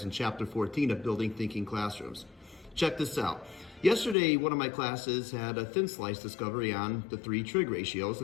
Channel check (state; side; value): drops out; right; at 4.2 s